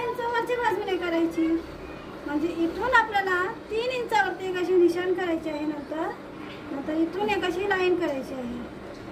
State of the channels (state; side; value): identical; both; correlation 1.00